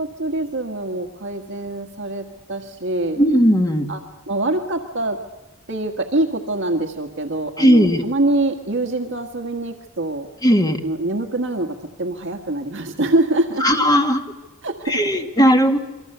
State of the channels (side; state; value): both; normal; correlation 0.51